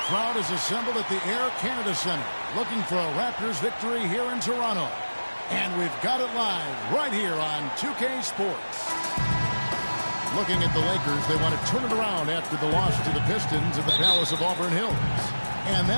crowd is assembled at the Air Canada Centre, looking for a Raptors victory here in Toronto. And we've got it live right here on 2K Sports. Looking at the Lakers, they want to turn it around after the loss to the Pistons at the Palace of Auburn Hills. And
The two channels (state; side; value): inverted; both; correlation -1.00